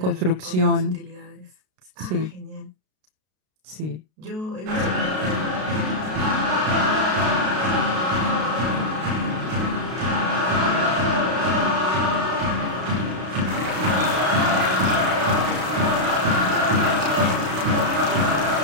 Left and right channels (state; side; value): late; left; 32 ms